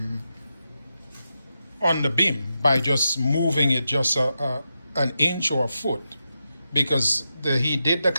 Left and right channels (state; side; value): inverted; both; correlation -0.88